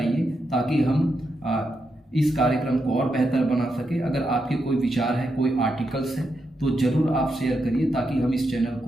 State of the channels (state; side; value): normal; both; correlation 0.84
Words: ताकि हम इस कार्यक्रम को और बेहतर बना सके। अगर आपके कोई विचार है, कोई आर्टिकल्स है, तो ज़रूर आप शेयर करिए, ताकि हम इस चैनल